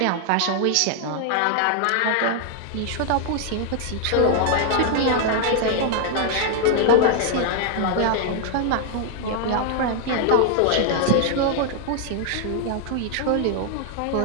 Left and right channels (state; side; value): different; both; correlation 0.00